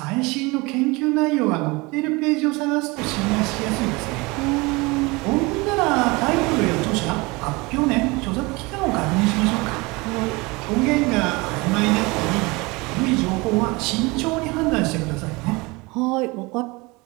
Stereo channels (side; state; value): left; quieter; 24.8 dB